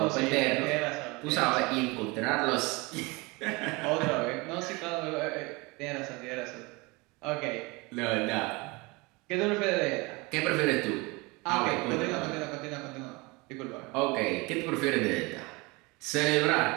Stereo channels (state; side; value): quieter; left; 25.6 dB